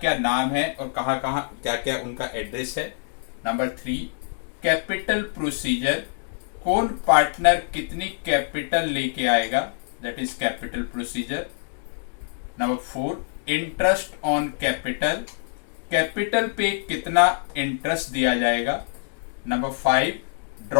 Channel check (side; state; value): right; silent; 62 dB below the other